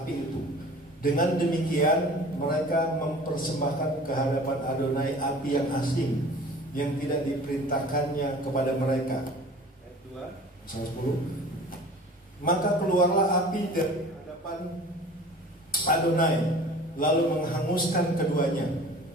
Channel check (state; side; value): normal; both; correlation 0.43